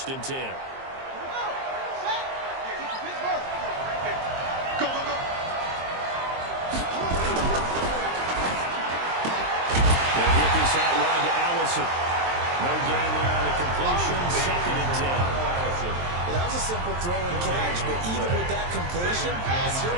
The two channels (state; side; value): late; left; 23 ms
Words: and 10. Go, go, go. They'll get this out wide to Allison. No gain there on the completion. 2nd and 10. Well, that was a simple throw and catch, but even with that completion, 0